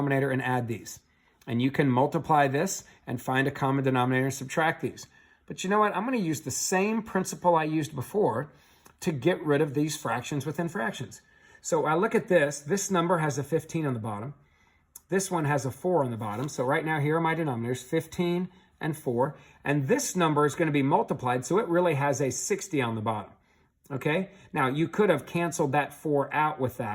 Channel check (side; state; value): both; identical; correlation 1.00